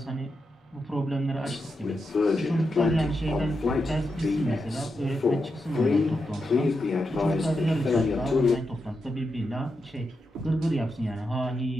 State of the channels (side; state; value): both; normal; correlation 0.86